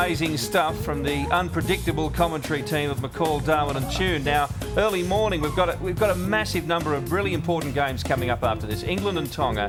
stuff from the unpredictable commentary team of McCall, Darwin and Tune. Now, early morning, we've got a massive number of really important games coming up after this. England and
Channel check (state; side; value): identical; both; correlation 1.00